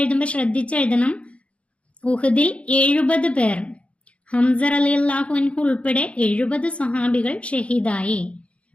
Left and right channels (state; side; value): late; right; 0.062 ms